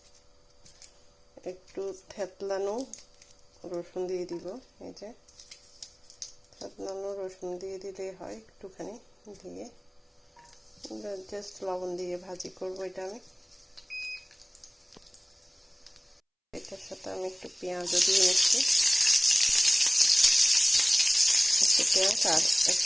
একটু থেতলানো রসুন দিয়ে দিব। এই যে থেতলানো রসুন দিয়ে দিলেই হয়, একটুখানি দিয়ে জাস্ট লবণ দিয়ে ভাজি করব এটা আমি। এটার সাথে আমি একটু পেঁয়াজও দিয়ে নিচ্ছি, একটু পেঁয়াজ আর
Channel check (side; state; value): both; identical; correlation 1.00